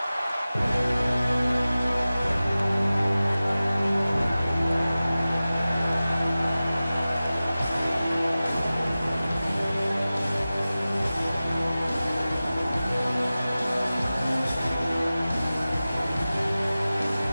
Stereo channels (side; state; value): both; inverted; correlation -0.96